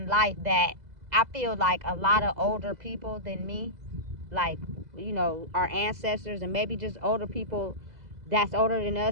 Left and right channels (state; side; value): late; left; 2.0 ms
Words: life that I feel like a lot of older people than me, like our ancestors and maybe just older people that's older than